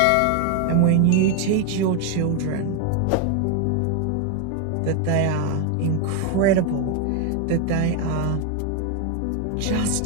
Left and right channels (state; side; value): different; both; correlation 0.01